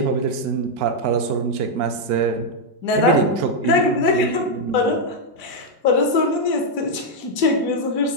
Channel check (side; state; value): left; late; 1.8 ms